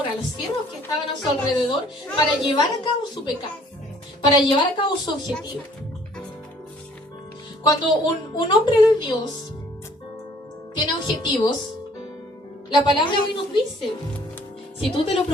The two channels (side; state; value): both; normal; correlation 0.58